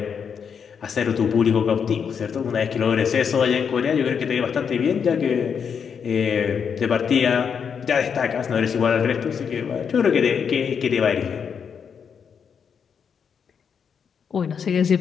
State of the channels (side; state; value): right; quieter; 6.9 dB